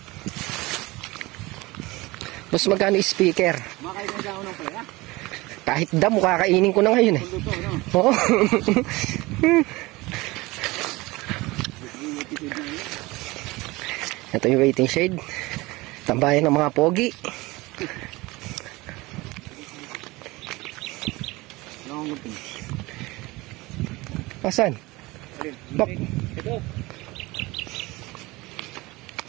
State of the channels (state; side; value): quieter; left; 21.6 dB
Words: Mas magkano speaker? Makakain na ako ng palaya. Kahit damo, kakainin ko na ngayon eh. Luto, no? Oo. Ito yung waiting shade. Tambayan ng mga pogi. Asan? Bak. Ito.